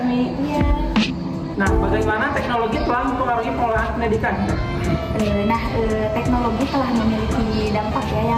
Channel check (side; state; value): both; identical; correlation 1.00